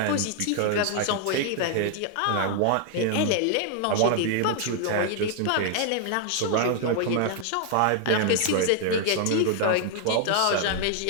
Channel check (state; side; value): different; both; correlation 0.00